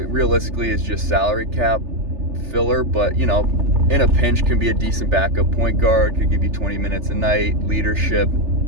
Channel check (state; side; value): late; left; 3.3 ms